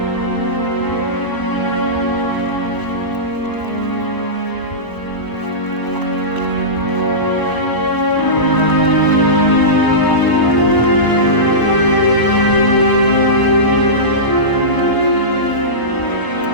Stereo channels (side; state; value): right; late; 1.0 ms